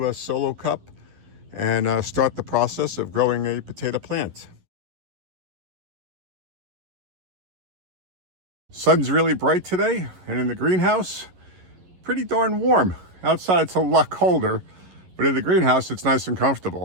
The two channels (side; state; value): left; late; 11 ms